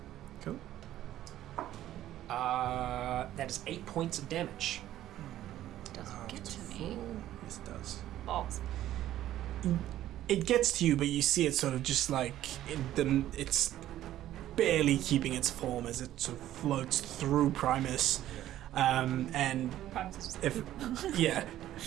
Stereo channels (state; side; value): quieter; left; 13.1 dB